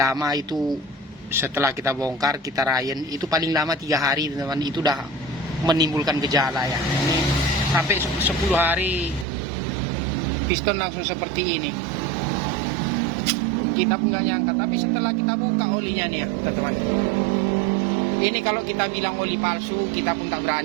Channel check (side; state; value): left; drops out; at 9.2 s